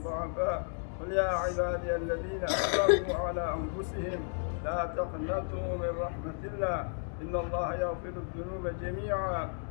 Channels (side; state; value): right; silent; 56 dB below the other